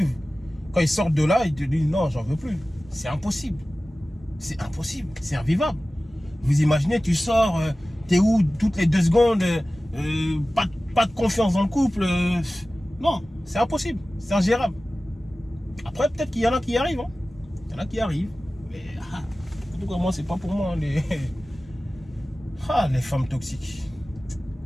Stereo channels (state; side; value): normal; both; correlation 0.96